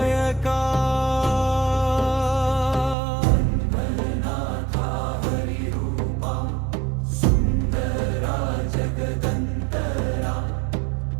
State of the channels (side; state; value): left; drops out; at 3.0 s